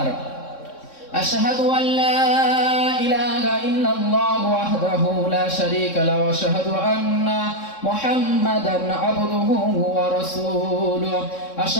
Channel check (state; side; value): late; right; 3.7 ms